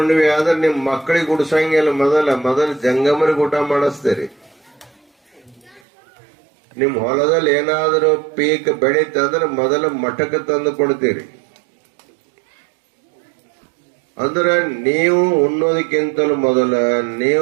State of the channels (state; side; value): drops out; left; at 5.8 s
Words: ಆದ್ರೆ ನಿಮ್ ಮಕ್ಕಳಿಗೆ ಉಡ್ಸಂಗಿಲ್ಲ, ಮೊದಲ ಜಂಗಮರಿಗೆ ಊಟ ಮಾಡಿಸ್ತೀರಿ. ನಿಮ್ ಹೊಲದಲ್ಲಿ ಏನಾದ್ರೂ ಪೀಕ್ ಬೆಳೀತಂದ್ರೆ ಮೊದಲ ಮಠಕ್ಕೆ ತಂದು ಕೊಡ್ತೀರಿ. ಅಂದ್ರೆ ನೀವು ಉಣ್ಣೋದಕ್ಕಿಂತಲೂ ಮೊದಲ,